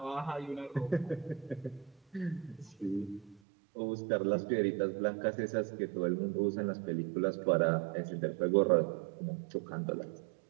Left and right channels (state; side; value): drops out; left; at 3.4 s